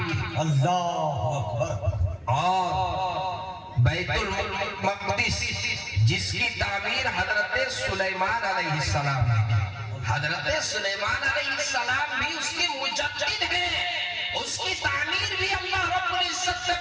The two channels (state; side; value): identical; both; correlation 1.00